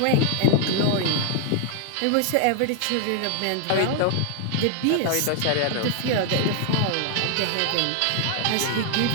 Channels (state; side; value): different; both; correlation 0.00